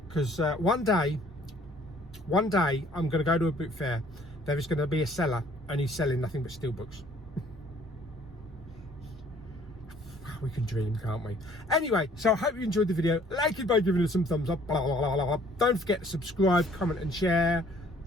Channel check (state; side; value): normal; both; correlation 0.58